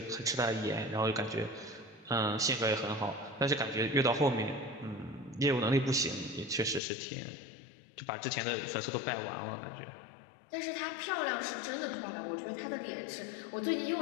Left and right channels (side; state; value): right; drops out; at 6.8 s